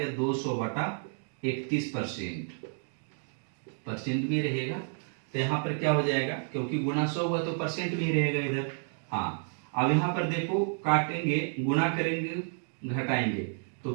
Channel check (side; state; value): left; silent; 56 dB below the other